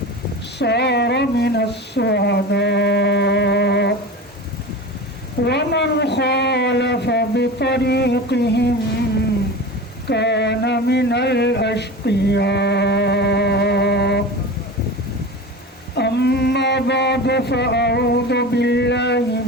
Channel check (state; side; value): normal; both; correlation 0.30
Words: صار من السعداء ومن خالف بطريقهم كان من الأشقياء أما بعد فأعوذ بالله